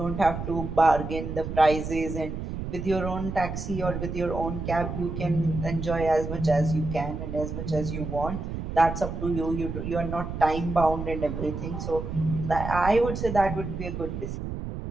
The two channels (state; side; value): noise; right; rumble, 6 dB below the sound